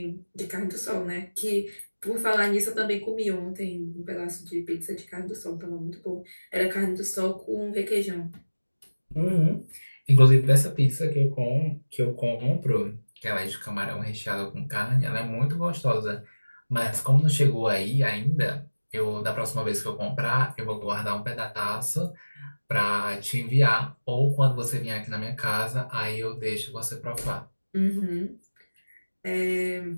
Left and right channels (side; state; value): both; inverted; correlation -1.00